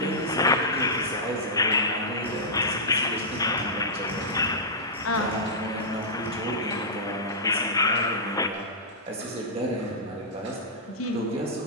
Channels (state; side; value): normal; both; correlation -0.14